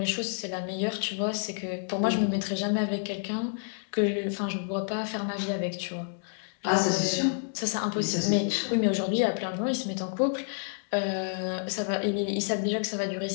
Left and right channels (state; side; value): silent; right; digital silence